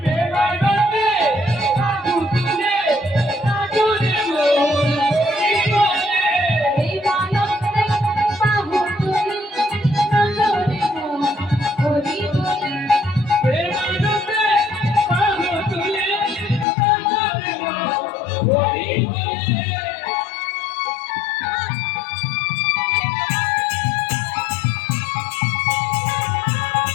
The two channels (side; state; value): right; drops out; at 16.7 s